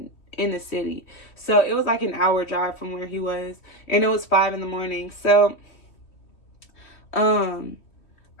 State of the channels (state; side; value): late; right; 3.1 ms